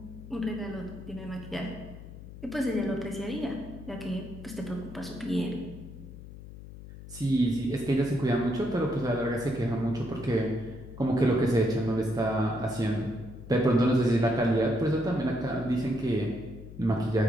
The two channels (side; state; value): left; noise; hum, 14 dB below the sound